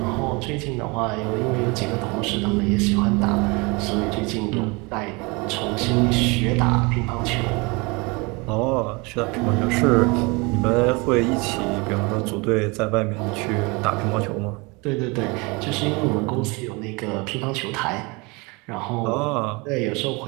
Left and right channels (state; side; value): quieter; left; 27.4 dB